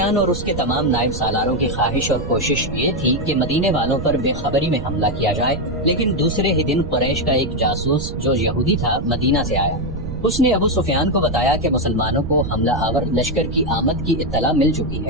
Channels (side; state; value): right; noise; rumble, 8 dB below the sound